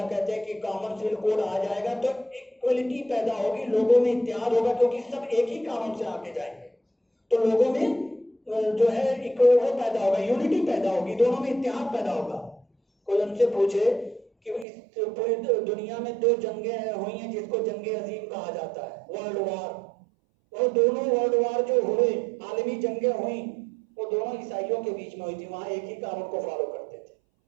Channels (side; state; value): left; drops out; at 14.7 s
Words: کہتے ہیں کہ کامن سول کوڈ آ جائے گا تو ایکوالٹی پیدا ہوگی، لوگوں میں اتحاد ہوگا، کیونکہ سب ایک ہی قانون سے آگے جائیں گے تو لوگوں میں جو ہے ایک وہ پیدا ہوگا، یونٹی پیدا ہوگی، دونوں میں اتحاد پیدا ہوگا۔ کوئی ان سے پوچھے کہ اس پوری دنیا میں 2 جنگیں ہوئی ہیں جس کو جنگ عظیم کہا جاتا ہے، ورلڈ وار، وہ دونوں ورلڈ وار جو ہوئے، عالمی جنگیں ہوئیں، وہ دونوں عیسائیوں کے بیچ میں ہوئی تھی، وہاں ایک ہی قانون کو فالو کرتے تھے۔